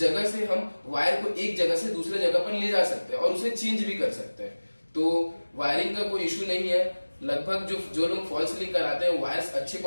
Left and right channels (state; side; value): inverted; both; correlation -1.00